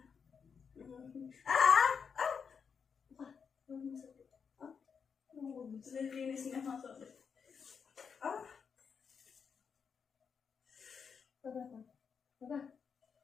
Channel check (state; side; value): quieter; right; 6.3 dB